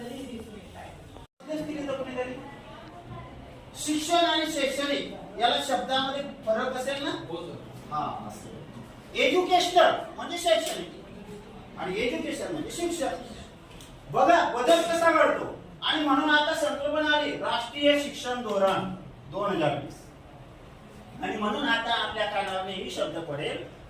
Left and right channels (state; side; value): identical; both; correlation 1.00